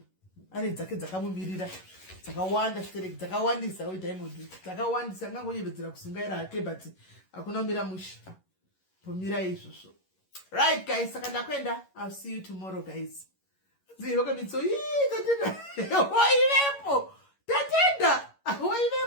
Ane dzake dzakamumirira. Dzakawanda stereki, dzakawandisa Diamond. Dzakawandisa angangonyevedzera kusungaira hake but hakuna mira musha. Pomira izvozvo. Right, guys. Saka ndakwenda. I'll see you tomorrow, guys. Ziroka mitso. Tatenda. Wailepo. Tatenda.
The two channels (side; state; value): right; late; 11 ms